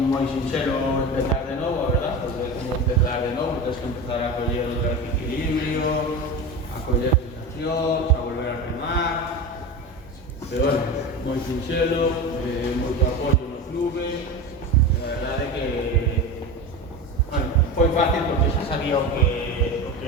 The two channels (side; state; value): both; normal; correlation 0.26